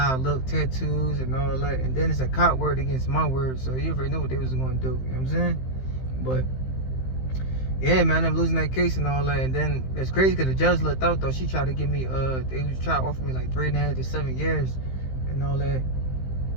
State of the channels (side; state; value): right; late; 15 ms